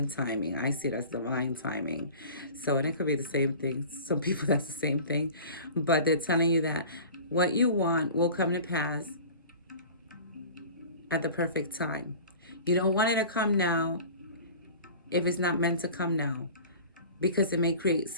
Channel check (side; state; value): both; inverted; correlation -0.40